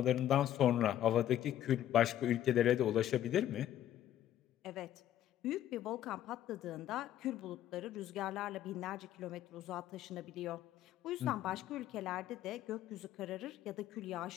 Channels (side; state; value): right; quieter; 11.9 dB